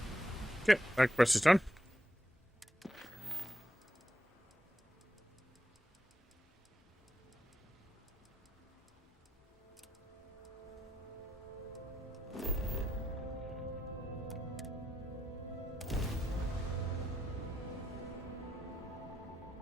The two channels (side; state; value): both; normal; correlation 0.82